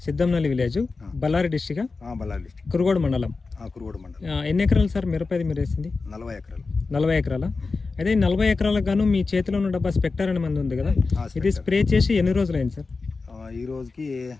Siddhamnalli village, Ballari district, Ballari district, Kurugodu మండలం. కురుగోడు మండలం. ఎన్ని ఎకరాలు సార్ మిరపది మీరు వేసింది? 40 ఎకరాలు. 40 ఎకరాల. అయితే ఈ 40 ఎకరాలకు గాను మీ చేతిలో ఉన్న డబ్బా స్పెక్టర్ అనే మంది ఉంది కదా, ఇది స్ప్రే చేసి ఎన్ని రోజులు అయింది సార్? ఈ రోజుకి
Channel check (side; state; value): right; quieter; 4.1 dB